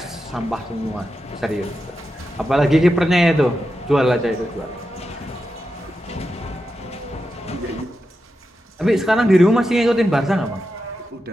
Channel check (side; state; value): both; normal; correlation 0.89